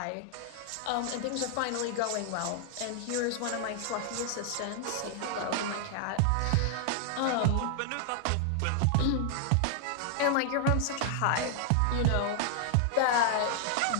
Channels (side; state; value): both; different; correlation 0.00